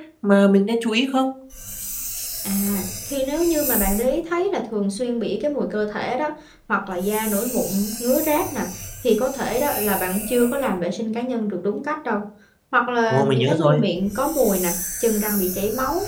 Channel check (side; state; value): both; identical; correlation 1.00